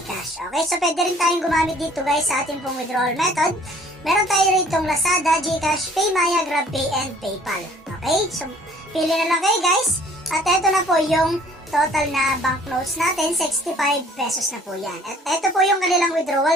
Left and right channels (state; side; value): normal; both; correlation 0.55